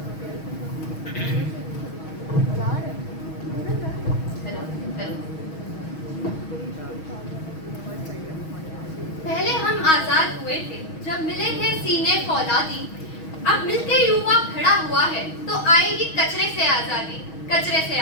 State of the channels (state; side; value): late; right; 6.3 ms